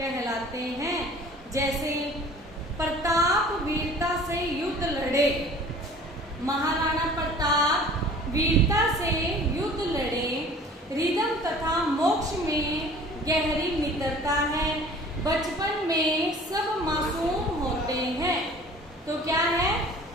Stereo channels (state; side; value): normal; both; correlation 0.47